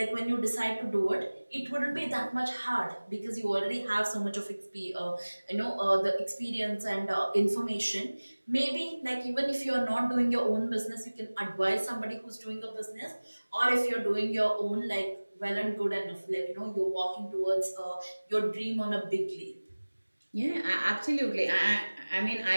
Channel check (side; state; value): both; inverted; correlation -1.00